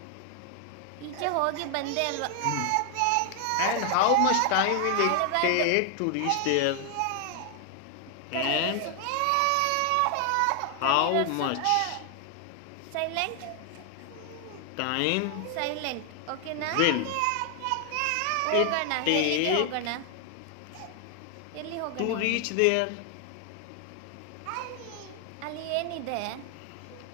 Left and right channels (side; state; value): both; different; correlation 0.00